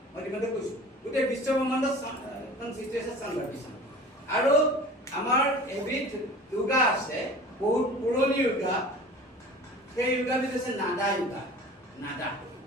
মই ইতিমধ্যে কৈছোঁ গোটেই বিশ্ব ব্ৰহ্মাণ্ডত সৃষ্টি হৈছে চাউণ্ড ভাইব্ৰেশ্যন। আৰু আমাৰ এবিধ য়োগা আছে, বহুত পুৰণি য়োগা, সেই য়োগাবিধ হৈছে নাদা য়োগা।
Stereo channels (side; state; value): both; normal; correlation 0.41